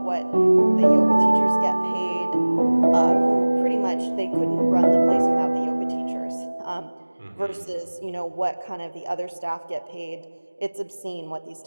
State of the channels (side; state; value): both; inverted; correlation -1.00